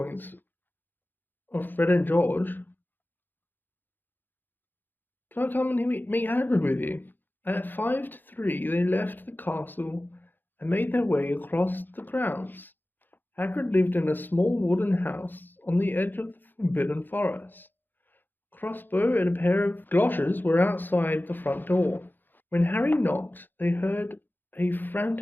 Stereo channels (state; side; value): late; right; 0.091 ms